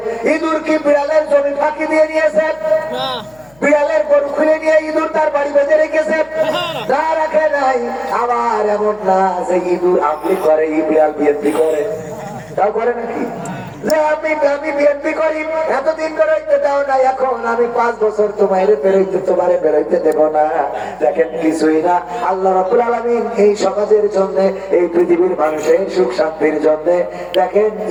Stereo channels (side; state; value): left; noise; hum, 29 dB below the sound